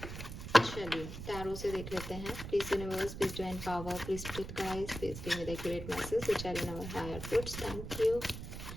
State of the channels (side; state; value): right; noise; rumble, 8 dB below the sound